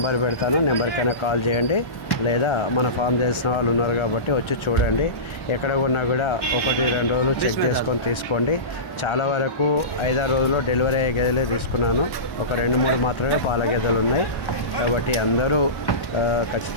పెడతాను, నెంబర్కైనా కాల్ చేయండి. లేదా మన ఫామ్ తెలిసిన వాళ్ళు ఉన్నారు కాబట్టి వచ్చి చూడండి. ఎక్కడ కొన్నా కూడా 1-2 రోజులు చెక్ చేసుకొని తీసుకోండి. చాలా వరకు 5-6 రోజుల్లో డెలివరీ అయ్యే గేదెలే తీసుకున్నాను. ఒక 2-3 మాత్రమే పాల గేదెలు ఉన్నాయి. కాబట్టి అందరూ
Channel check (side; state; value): right; late; 1.4 ms